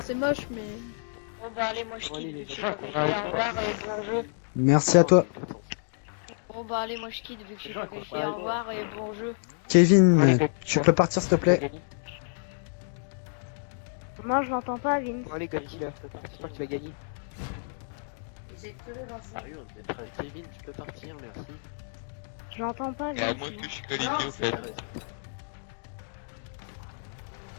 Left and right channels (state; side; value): silent; right; digital silence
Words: c'est moche, mais. Bon bah allez, moi je quitte. Au revoir et bon jeu. Merci à toi. Bon bah allez, moi je quitte vu que je suis pas qualifié. Au revoir et bon jeu. Kevin, tu peux partir s'il te plaît? Moi, je l'entends pas, Vince. Allez, Godzilla, j'espère que tu vas gagner. Sérieux, on est prêt. Kevin, tu peux partir, merci. Je l'entends pas, Et à moins que je suis qualifié au fait.